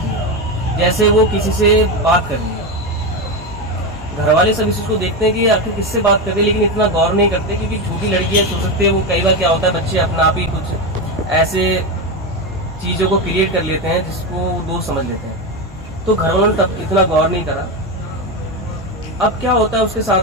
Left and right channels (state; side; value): normal; both; correlation 0.14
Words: है। जैसे वो किसी से बात कर रही है। घर वाले सब इस चीज़ को देखते हैं कि आखिर किससे बात करते हैं, लेकिन इतना गौर नहीं करते क्योंकि छोटी लड़कियां हो सकती है, वो कई बार क्या होता है बच्चे अपना आप ही कुछ ऐसे चीज़ों को क्रिएट कर लेते हैं जिसको दोस्त समझ लेते हैं। तो घर वालों ने तब इतना गौर नहीं करा। अब क्या होता है उसके